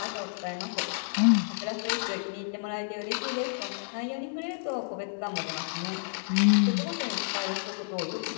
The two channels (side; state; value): right; silent; 58 dB below the other